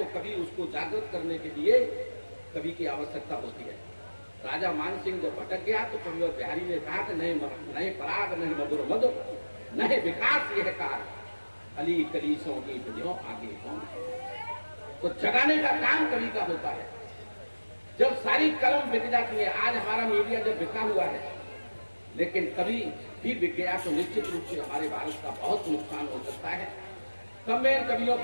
कभी उसको जागृत करने के लिए कवि की आवश्यकता होती है। राजा मान सिंह जब भटक गया तो कविवर बिहारी ने कहा कि नए पराग, नए मधुर मधुर, नए विकास यह कार, अली कलीसों की जो आगे कौन है। तो जगाने का काम कवि का होता है। जब सारी कलम बिक जाती है, आज हमारा मीडिया जब बिका हुआ है, लेकिन कभी भी बिक गया तो निश्चित रूप से हमारे भारत का बहुत नुकसान हो सकता है। तब मैं कवियों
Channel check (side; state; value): both; inverted; correlation -1.00